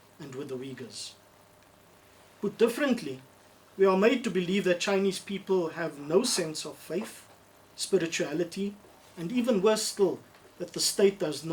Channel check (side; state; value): both; identical; correlation 1.00